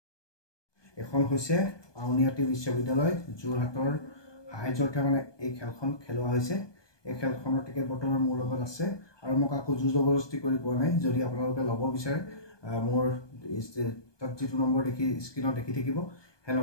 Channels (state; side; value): late; right; 1.2 ms